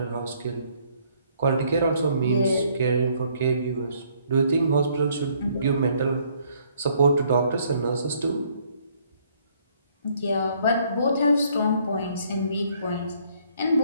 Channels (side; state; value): both; inverted; correlation -0.65